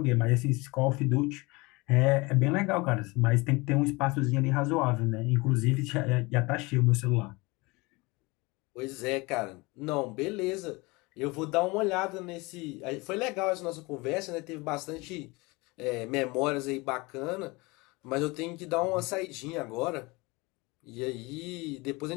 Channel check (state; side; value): quieter; right; 24.6 dB